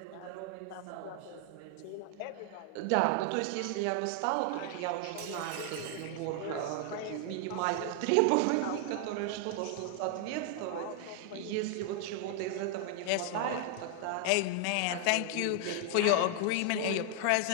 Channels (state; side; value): different; both; correlation 0.00